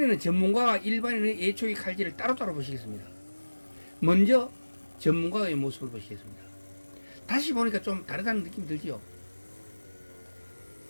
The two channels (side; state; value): both; inverted; correlation -1.00